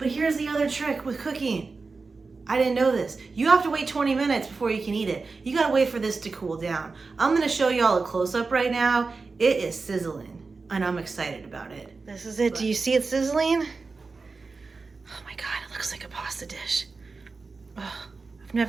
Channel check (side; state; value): left; quieter; 4.2 dB